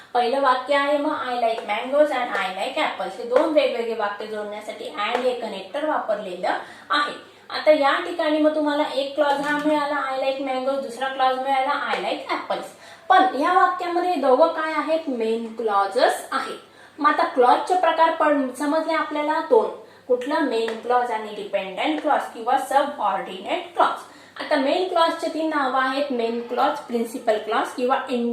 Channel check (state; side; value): identical; both; correlation 1.00